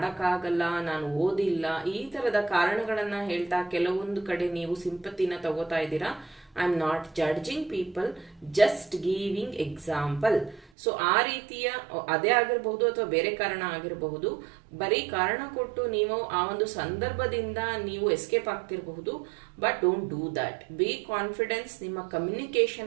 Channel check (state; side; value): drops out; left; at 10.7 s